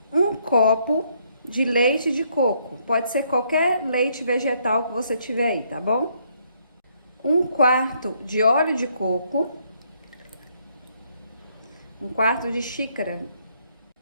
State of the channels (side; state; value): both; inverted; correlation -0.70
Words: 1 copo de leite de coco. Pode ser qualquer leite vegetal que você tiver aí, tá bom? 1/4 de óleo de coco. 1/4 de xícara.